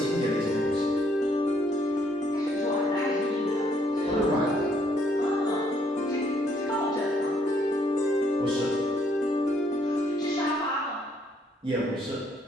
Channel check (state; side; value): normal; both; correlation 0.68